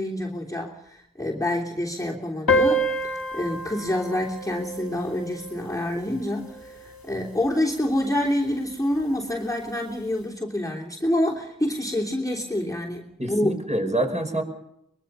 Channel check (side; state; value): both; normal; correlation 0.72